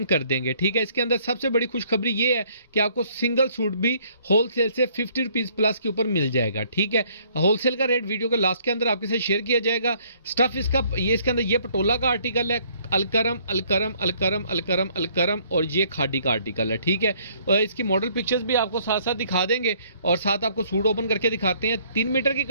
कर देंगे, ठीक है। इसके अंदर सबसे बड़ी खुशखबरी ये है कि आपको सिंगल सूट भी होलसेल से 50 रुपीज प्लस के ऊपर मिल जाएगा, ठीक है। होलसेल का रेट वीडियो के लास्ट के अंदर आपके साथ शेयर किया जाएगा। स्टफ इसका ये इसके अंदर ये पटोला का आर्टिकल है, अलकरम अलकरम अलकरम अलकरम अलकरम और ये खाडी का आर्टिकल है, ठीक है। और इसकी मॉडल पिक्चर्स भी आपको साथ साथ दिखा देंगे और साथ आपको सूट ओपन करके दिखाते हैं। 3 मीटर की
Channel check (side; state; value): both; inverted; correlation -0.63